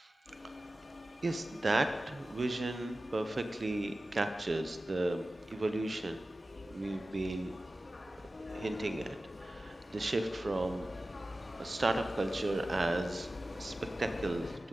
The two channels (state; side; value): normal; both; correlation 0.95